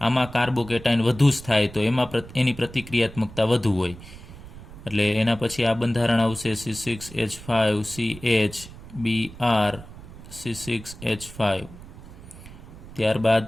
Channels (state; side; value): noise; right; rumble, 16 dB below the sound